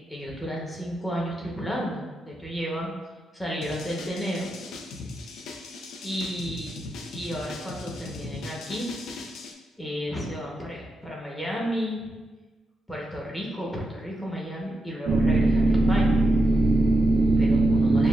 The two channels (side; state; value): both; normal; correlation 0.86